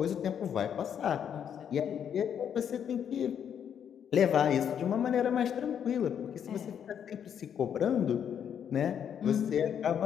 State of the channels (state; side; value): quieter; right; 8.5 dB